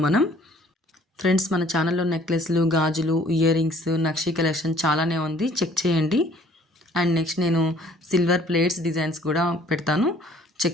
మనం ఫ్రెండ్స్ మన ఛానల్లో నెక్లెస్లు, గాజులు, ఇయర్ రింగ్స్, నక్షీ కలెక్షన్ చాలానే ఉంది, చెక్ చేయండి. అండ్ నెక్స్ట్ నేను సిల్వర్ ప్లేట్స్ డిజైన్స్ కూడా పెడతాను,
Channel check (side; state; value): both; normal; correlation 0.56